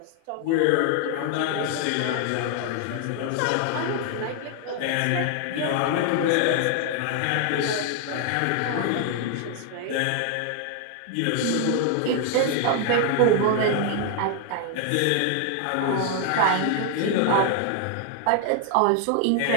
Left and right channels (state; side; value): different; both; correlation 0.00